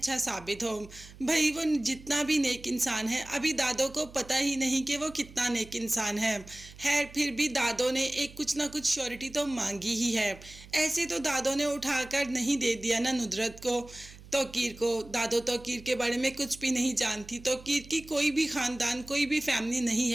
साबित हो। भाई वो जितना भी नेक इंसान है, अभी दादो को पता ही नहीं कि वो कितना नेक इंसान है। फिर भी दादो ने एक कुछ ना कुछ श्योरिटी तो मांगी ही है। ऐसे तो दादो ने उठाकर नहीं दे दिया ना नुदरत को, तौकीर को। दादो तौकीर के बारे में कुछ भी नहीं जानती, तौकीर की कोई भी ख़ानदान, कोई भी फैमिली नहीं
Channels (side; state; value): right; noise; hum, 19 dB below the sound